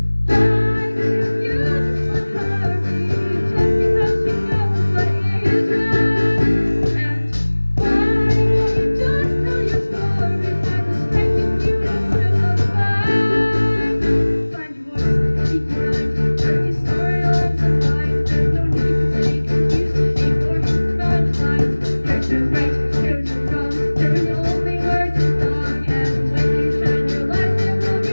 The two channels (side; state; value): both; inverted; correlation -1.00